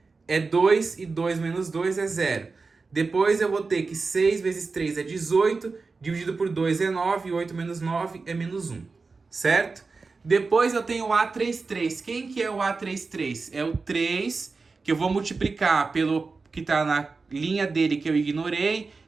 é 2, e 2 menos 2 é 0. Depois eu vou ter que 6 vezes 3 é 18, dividido por 2 é 9, e 8 menos 9 é menos 1. Certo? Depois eu tenho o A33. Quem que é o A33? É o 3, que eu vou multiplicar pelo que está na linha dele, que eu ignorei,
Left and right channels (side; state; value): left; quieter; 4.2 dB